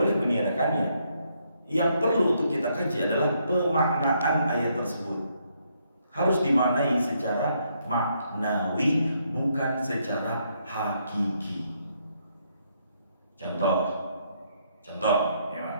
meniadakannya. Yang perlu untuk kita kaji adalah pemaknaan ayat tersebut. Harus dimaknai secara maknawi, bukan secara hakiki. Contoh, ya Pak.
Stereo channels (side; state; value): both; inverted; correlation -0.74